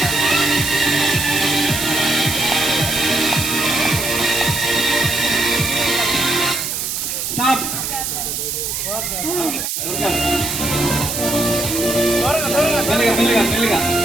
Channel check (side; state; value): right; noise; hiss, 3 dB below the sound